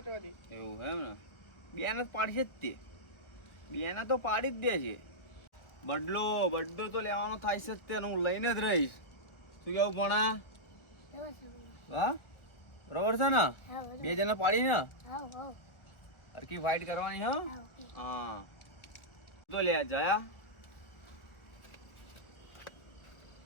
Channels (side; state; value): right; late; 1.4 ms